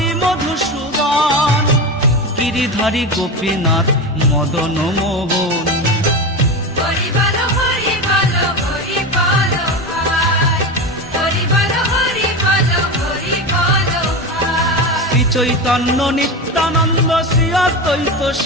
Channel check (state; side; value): normal; both; correlation 0.21